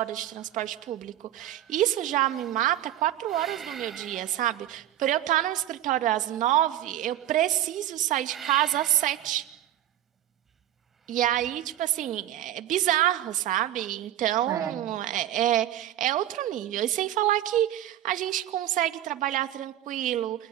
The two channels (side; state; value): left; quieter; 12.6 dB